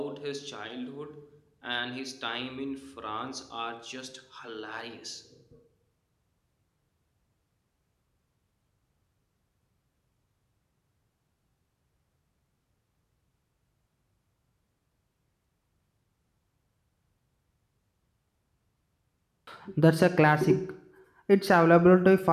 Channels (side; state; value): both; identical; correlation 1.00